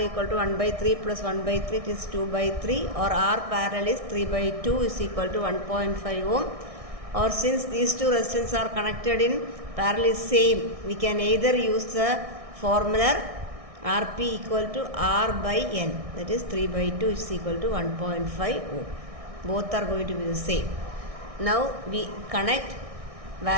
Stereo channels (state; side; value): late; left; 1.6 ms